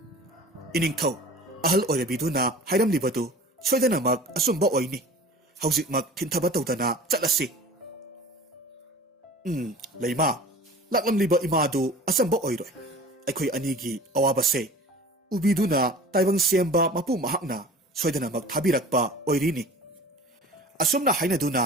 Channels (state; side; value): normal; both; correlation 0.42